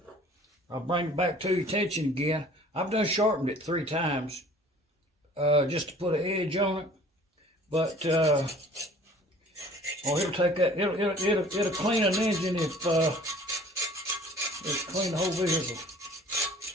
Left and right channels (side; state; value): both; normal; correlation 0.50